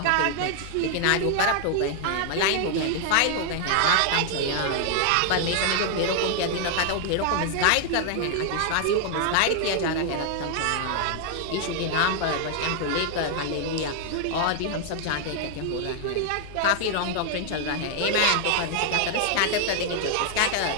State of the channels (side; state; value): both; different; correlation 0.00